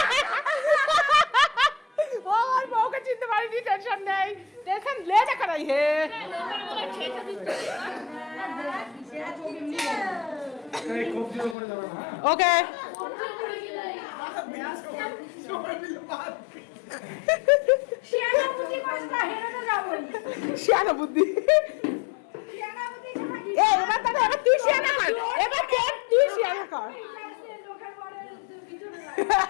ও আমার বউকে চিনতে পারিনি, টেনশন নেই, টেনশন লে দেখা নাই হে। ওকে শিয়ানা বুদ্ধি এবার তাহলে এবার তুই শিয়ানা কর, এবার তুই শিয়ানা কর।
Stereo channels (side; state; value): right; drops out; at 11.6 s